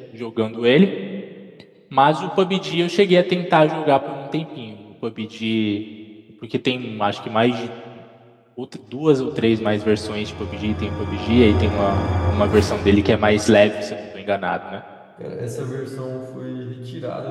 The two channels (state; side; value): identical; both; correlation 1.00